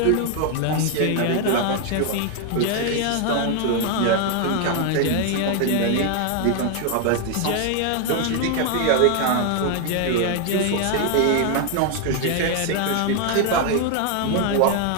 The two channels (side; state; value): both; different; correlation 0.01